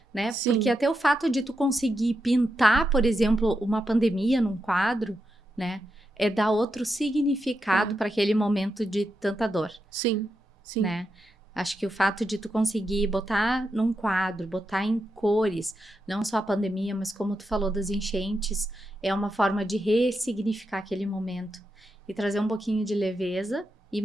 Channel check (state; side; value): normal; both; correlation 0.86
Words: né? sim. Porque até o fato de tu conseguir pintar, por exemplo, uma pandemia num quadro, né? É dar outro significado para aquele momento de tanta dor, Sim, sim. né? Acho que o fato de tu conseguir botar num quadro, botar em cores, não só a pandemia, mas como tu falou das enchentes, é uma forma de ressignificar aquele momento e trazer um pouquinho de leveza e